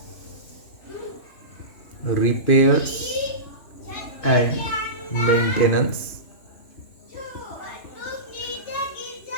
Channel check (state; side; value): late; right; 3.1 ms